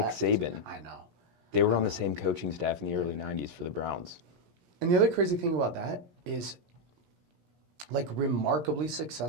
Saban. I know. They were on the same coaching staff in the early 90s for the Browns. And the other crazy thing about that is, like, remarkably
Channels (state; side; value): late; left; 17 ms